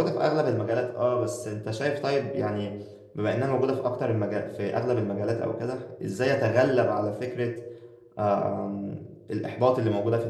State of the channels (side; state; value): both; identical; correlation 1.00